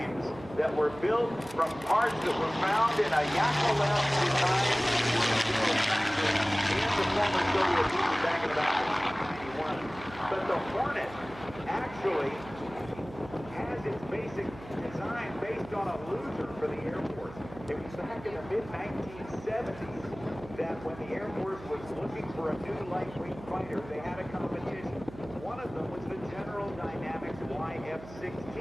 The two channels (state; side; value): noise; right; hum, 16 dB below the sound